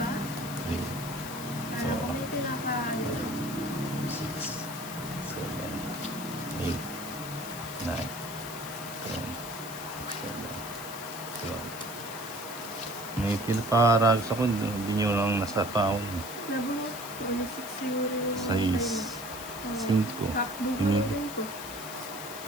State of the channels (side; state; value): left; noise; hiss, 11 dB below the sound